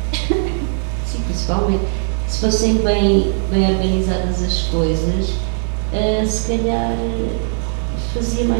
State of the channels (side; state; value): left; silent; 67 dB below the other